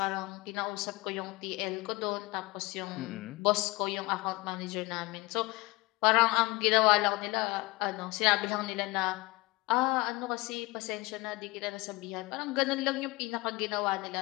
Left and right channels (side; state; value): right; quieter; 22.7 dB